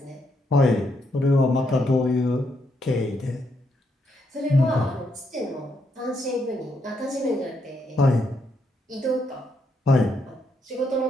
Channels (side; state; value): both; normal; correlation 0.77